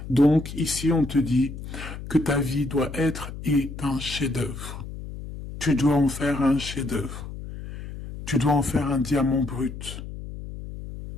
Donc, ici, on te dit que ta vie doit être un chef-d'œuvre. Tu dois en faire un chef-d'œuvre. Tu dois en faire un diamant brut.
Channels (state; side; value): noise; left; hum, 10 dB below the sound